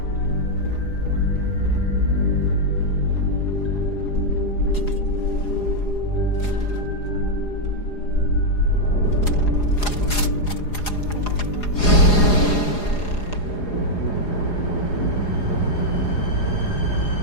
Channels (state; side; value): late; right; 4.9 ms